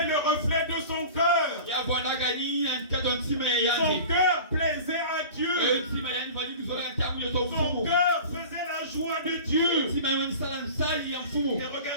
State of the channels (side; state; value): both; inverted; correlation -0.38